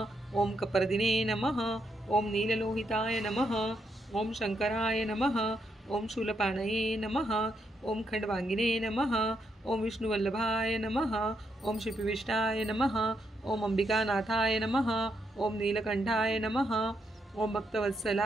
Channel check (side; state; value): both; normal; correlation 0.79